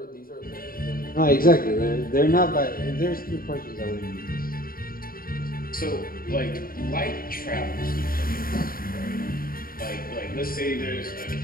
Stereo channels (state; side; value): late; right; 0.42 ms